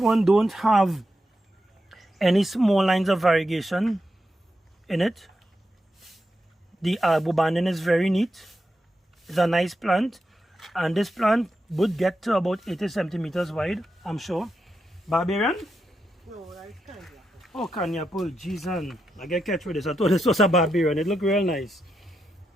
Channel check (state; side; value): normal; both; correlation 0.86